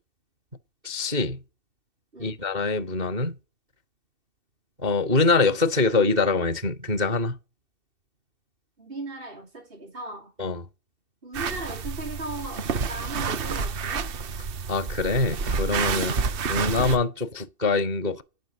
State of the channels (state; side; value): late; left; 2.7 ms